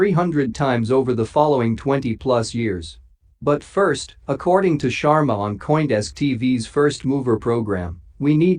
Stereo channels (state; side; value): identical; both; correlation 1.00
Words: times over the following 20-plus years. But first, according to Sharma on CoinDesk TV's First Mover program, we